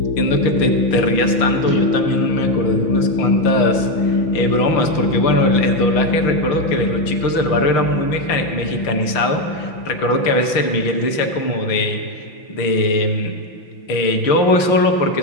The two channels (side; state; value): right; late; 5.9 ms